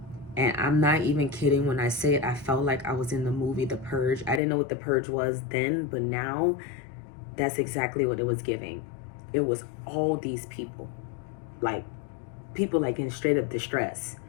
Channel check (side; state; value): right; drops out; at 4.4 s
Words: And I'm not even kidding when I say it. I felt like I was in the movie The Purge. I didn't know what The Purge was then, but now that's exactly what it was giving. It was all these people like in straight up distress.